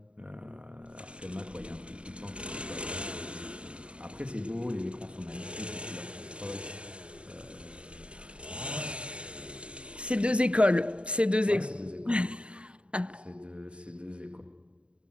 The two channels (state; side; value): late; left; 0.057 ms